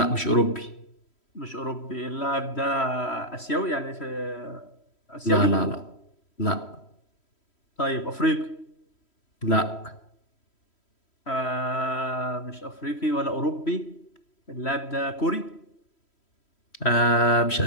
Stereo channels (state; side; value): late; right; 3.1 ms